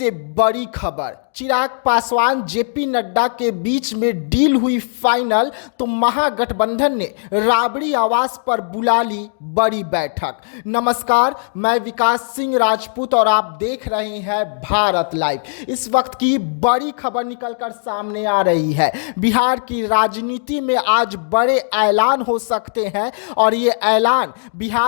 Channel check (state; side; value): silent; right; digital silence